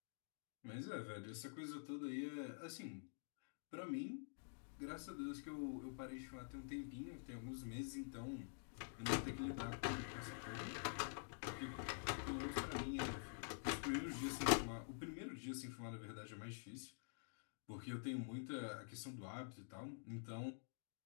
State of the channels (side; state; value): right; silent; digital silence